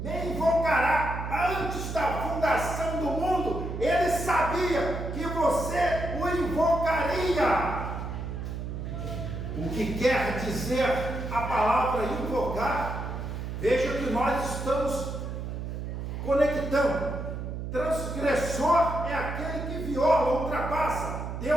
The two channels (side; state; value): right; noise; hum, 5 dB below the sound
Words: antes da fundação do mundo. Ele sabia que você o invocaria. O que quer dizer a palavra invocar? Veja que nós estamos conectando. Transgressor é aquele que viola, ultrapassa.